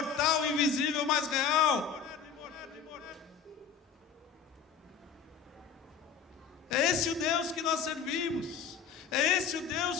invisível, mas real. É esse o Deus que nós servimos. É esse o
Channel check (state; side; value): quieter; right; 6.8 dB